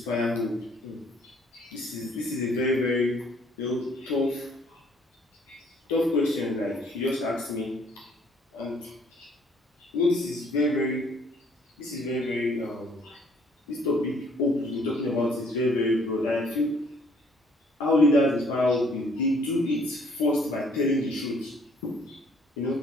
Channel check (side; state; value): both; normal; correlation 0.62